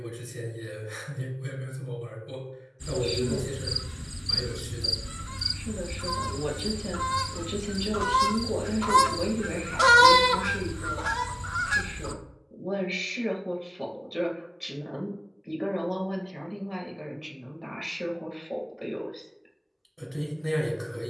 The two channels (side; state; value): both; identical; correlation 1.00